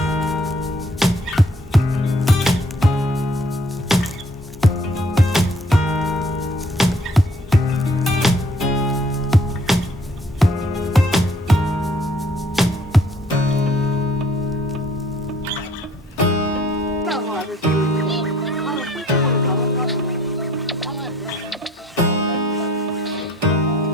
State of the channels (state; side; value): normal; both; correlation 0.60